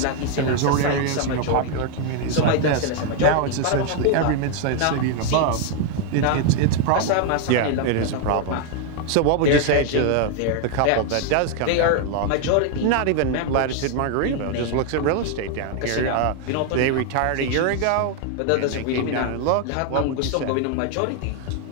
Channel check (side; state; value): both; different; correlation 0.00